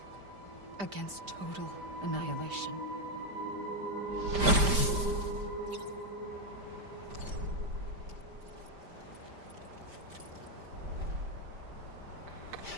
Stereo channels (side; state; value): left; late; 5.0 ms